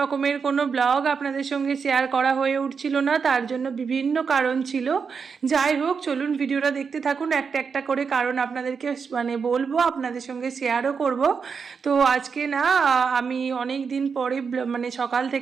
কোনো ব্লগ আপনাদের সঙ্গে শেয়ার করা হয়ে উঠছিল না, তার জন্য বিভিন্ন কারণ ছিল। যাই হোক, চলুন ভিডিওটা দেখতে থাকুন। একটা একটা করে কারণ আপনাদেরকে বলবো, আপনাদের সঙ্গে শেয়ারও করব। তো আজকে না আমি অনেক দিন পরে সকাল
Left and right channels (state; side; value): quieter; left; 5.8 dB